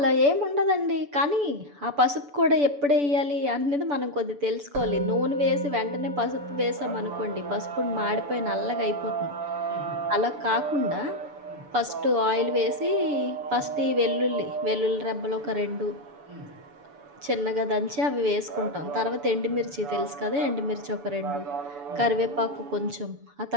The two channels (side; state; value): left; late; 6.9 ms